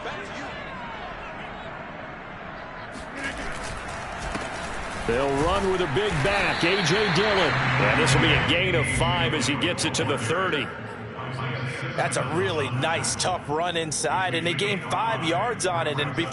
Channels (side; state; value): both; identical; correlation 1.00